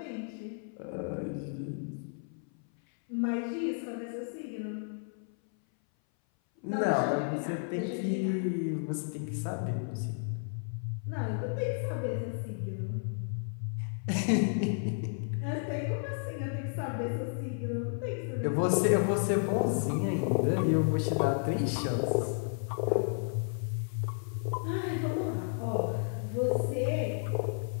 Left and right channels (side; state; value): right; silent; 56 dB below the other